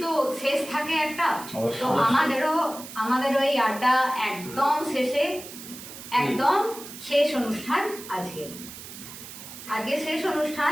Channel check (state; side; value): noise; right; hiss, 13 dB below the sound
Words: তো শেষ থাকে একটা, তো আমাদেরও এই আড্ডা একদম শেষে, একদম শেষ অনুষ্ঠান আজকে শেষ অনুষ্ঠান